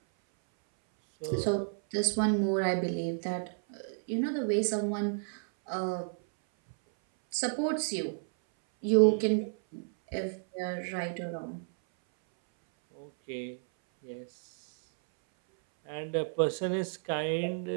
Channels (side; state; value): left; silent; 57 dB below the other